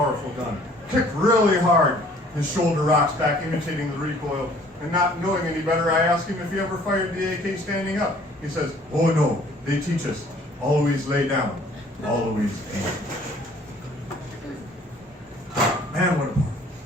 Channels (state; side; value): normal; both; correlation 0.56